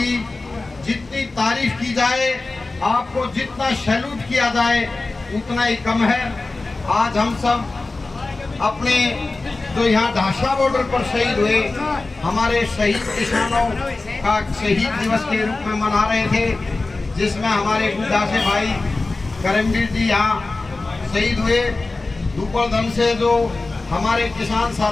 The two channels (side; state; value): right; quieter; 3.4 dB